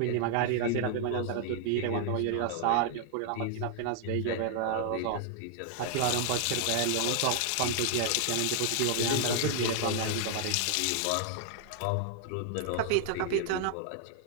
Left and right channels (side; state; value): both; different; correlation 0.00